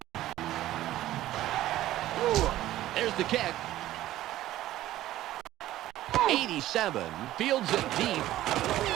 There's the kick. 87 fields it deep.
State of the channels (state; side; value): quieter; left; 14.5 dB